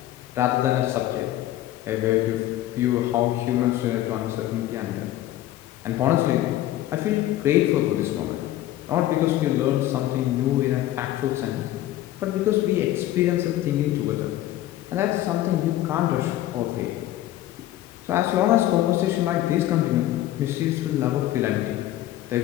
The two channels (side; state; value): right; quieter; 14.1 dB